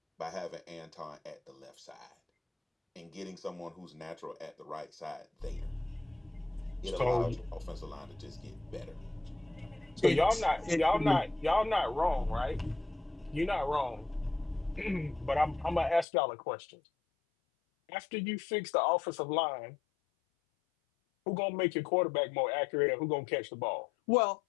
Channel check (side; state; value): right; drops out; at 16.1 s